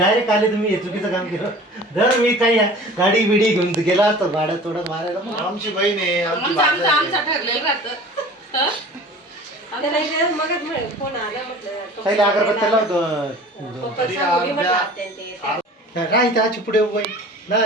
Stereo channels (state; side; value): normal; both; correlation 0.43